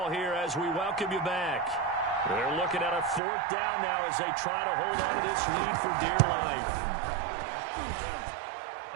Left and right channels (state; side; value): drops out; left; at 3.2 s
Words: here as we welcome you back. They're looking at a 4th down now as they try to hold on to this lead for dear life.